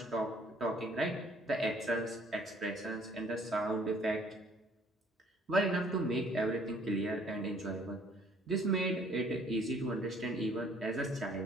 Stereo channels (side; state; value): both; normal; correlation 0.60